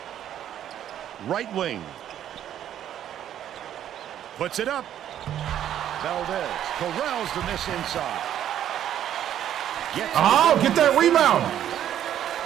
Right wing. Puts it up. Valdez corrals the miss inside. Get that rebound.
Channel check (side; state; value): left; quieter; 10.7 dB